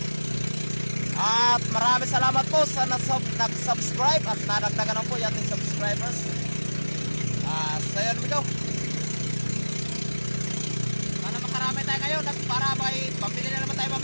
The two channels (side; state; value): both; inverted; correlation -1.00